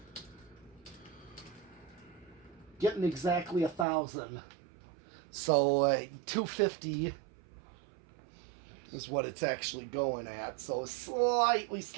Getting exactly 1,000. So 250 is what it's actually going at. So slightly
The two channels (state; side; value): drops out; left; at 3.9 s